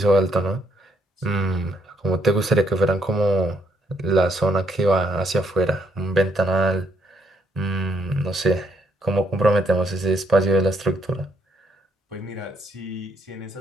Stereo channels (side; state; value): both; normal; correlation 0.72